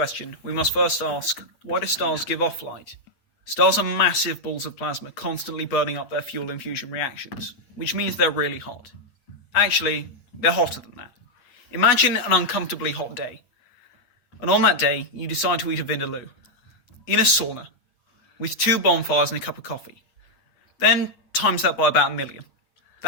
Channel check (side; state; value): right; late; 8.1 ms